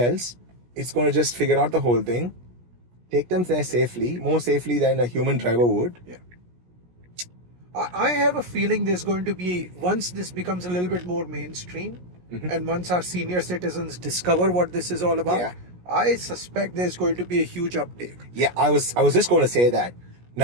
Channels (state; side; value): late; left; 17 ms